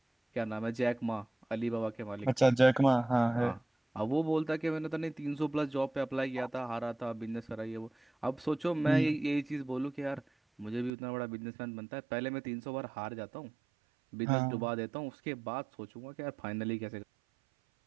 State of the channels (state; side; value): drops out; left; at 10.9 s